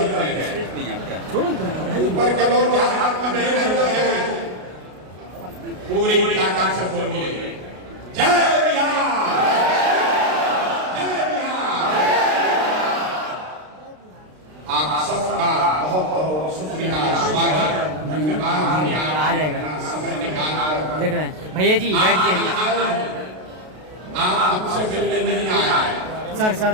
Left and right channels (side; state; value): left; late; 33 ms